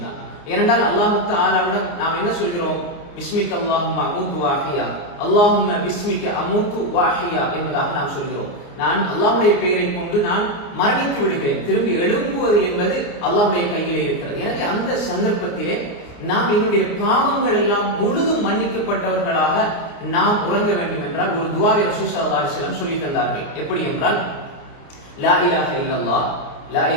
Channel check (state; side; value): late; right; 29 ms